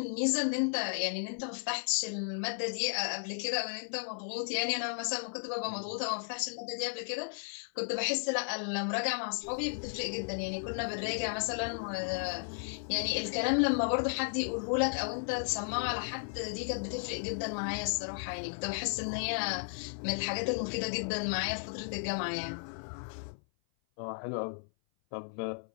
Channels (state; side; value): silent; right; 55 dB below the other